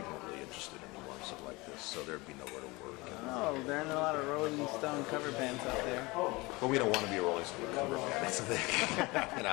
aren't really interested anymore in stuff like this, so there'd be nowhere to work. Oh, there aren't a lot of Rolling Stone cover bands out there. But we don't want to be a Rolling Stone cover band. That's the thing. You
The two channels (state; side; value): quieter; right; 23.5 dB